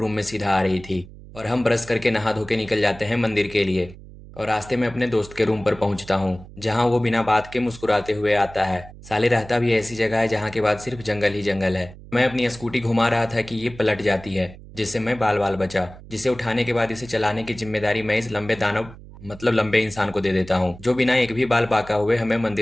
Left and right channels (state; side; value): noise; right; hum, 18 dB below the sound